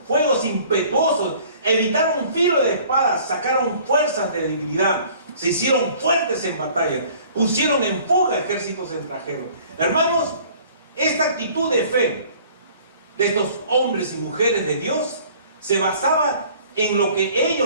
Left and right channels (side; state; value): both; inverted; correlation -0.52